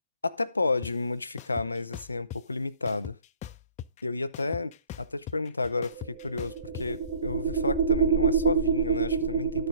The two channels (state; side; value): inverted; both; correlation -0.57